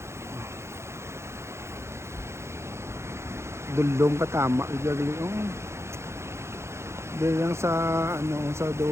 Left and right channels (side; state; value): left; late; 0.13 ms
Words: Dulong katama gali dili lang sa sa do